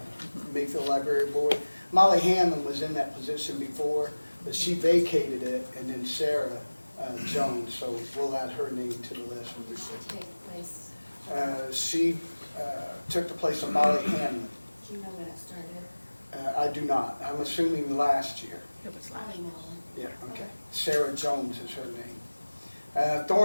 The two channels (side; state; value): both; inverted; correlation -1.00